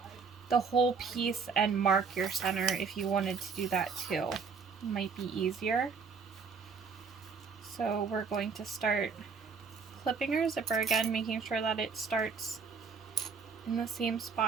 the whole piece and mark your center if you wanted to do that too. It might be easier. So we're going to start clipping our zipper again, making sure that it starts in the same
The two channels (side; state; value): left; quieter; 5.5 dB